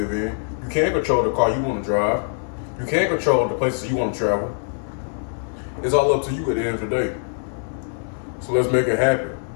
in. You can't control the car you want to drive. You can't control the places you want to travel. It's all up to you at the end of the day. So let's make it happen.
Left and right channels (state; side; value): silent; right; digital silence